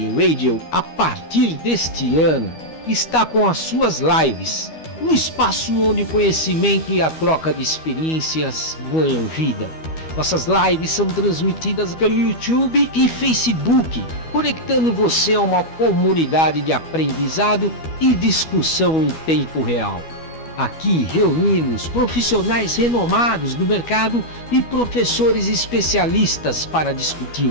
Radio, a partir deste ano, está com as suas lives, um espaço onde o conhecimento e a troca de experiências ganham vida. Nossas lives são transmitidas pelo YouTube e Facebook, conectando você a uma comunidade de aprendizado e discussão em tempo real. Aqui reunimos profissionais renomados do mercado e professores especialistas para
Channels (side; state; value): right; late; 12 ms